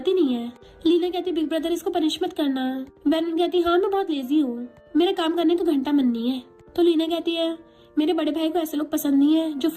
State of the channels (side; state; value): both; identical; correlation 1.00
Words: ही नहीं है। लीना कहती, बिग ब्रदर इसको पनिश मत करना। वैनवन कहती, हाँ मैं बहुत लेजी हूँ, मेरा काम करने को घंटा मन नहीं है। तो लीना कहती है, मेरे बड़े भाई को ऐसे लोग पसंद नहीं है जो